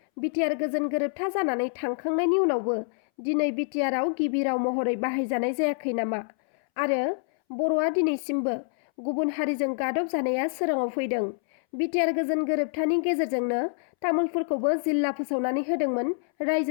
बिटिआर गोजोन गोरोबथा जानानै थांखांनायनि उनावबो दिनै बिटिआरआव गिबि राव महरै बाहायजानाय जायाखै नामा? आरो बर'आ दिनैसिमबो गुबुन हारिजों गादब जानाया सोराङाव फैदों। बिटिआर गोजोन गोरोबथानि गेजेरजोंनो तामुलपुरखौबो जिल्ला फोसावनानै होदोंमोन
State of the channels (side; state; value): right; silent; 60 dB below the other